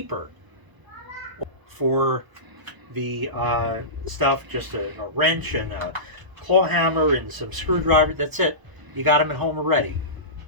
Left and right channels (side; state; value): left; late; 1.0 ms